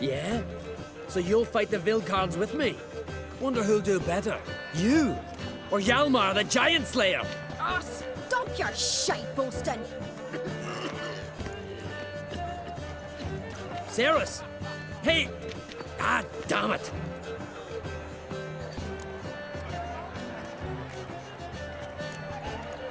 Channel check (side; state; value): both; identical; correlation 1.00